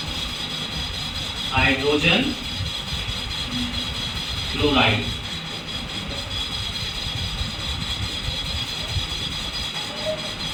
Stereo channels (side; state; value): both; identical; correlation 1.00